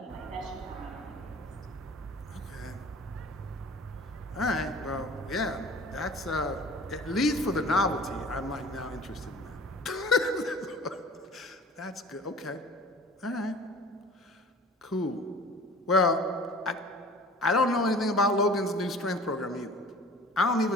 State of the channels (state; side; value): normal; both; correlation 0.45